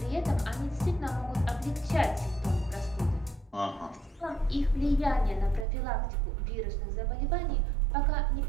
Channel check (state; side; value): drops out; left; at 5.7 s